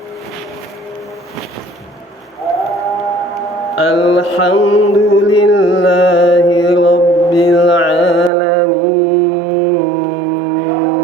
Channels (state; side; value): drops out; left; at 8.3 s